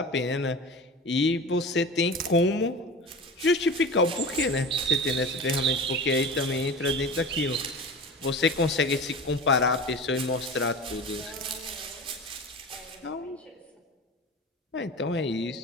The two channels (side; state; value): both; normal; correlation 0.33